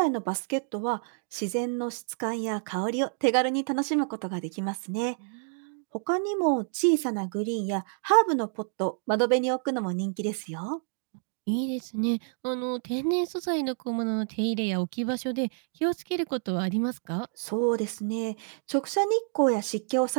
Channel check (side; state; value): left; silent; 59 dB below the other